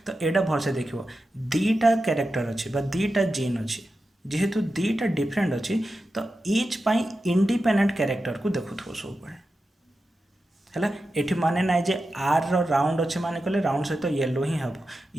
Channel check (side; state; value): both; normal; correlation 0.91